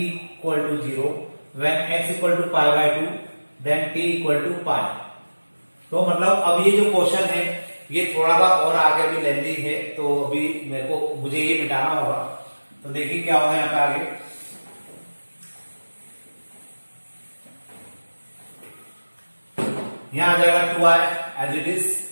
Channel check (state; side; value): inverted; both; correlation -1.00